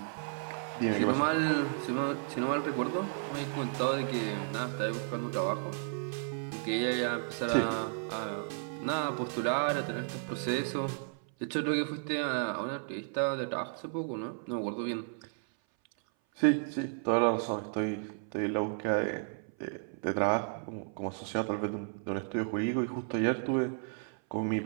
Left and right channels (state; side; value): silent; left; 56 dB below the other